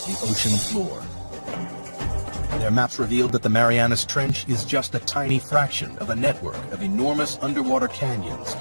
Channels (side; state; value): both; inverted; correlation -1.00